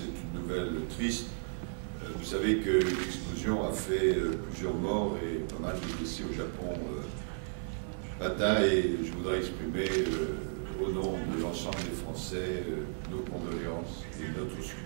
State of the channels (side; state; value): left; silent; 55 dB below the other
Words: une nouvelle triste, vous savez que l'explosion a fait plusieurs morts et pas mal de blessés au Japon matin, et je voudrais exprimer au nom de l'ensemble des Français nos condoléances et notre